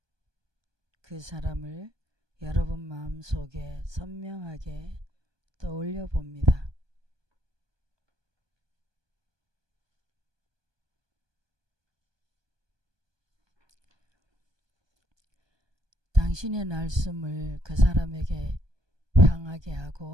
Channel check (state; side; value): late; left; 1.2 ms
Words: 그 사람을 여러분 마음속에 선명하게 떠올려 봅니다. 당신의 날숨을 그 사람에게 향하게